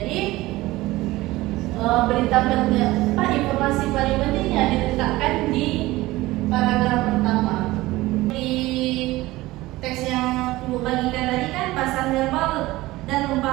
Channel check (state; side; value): quieter; left; 18.7 dB